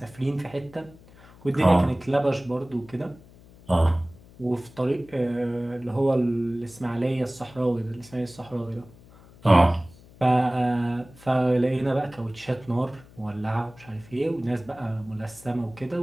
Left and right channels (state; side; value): noise; left; hum, 23 dB below the sound